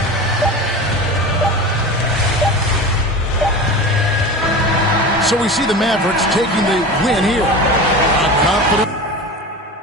So we see the Mavericks taking the win here. A confident.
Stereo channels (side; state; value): both; normal; correlation 0.30